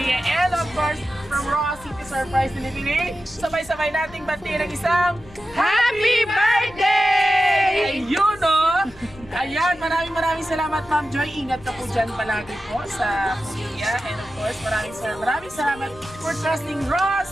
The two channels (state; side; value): noise; left; rumble, 22 dB below the sound